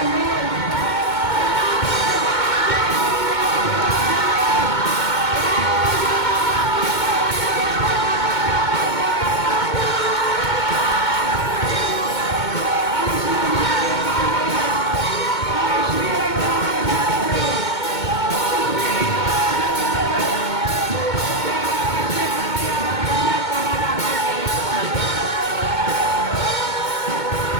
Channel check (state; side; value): late; right; 2.2 ms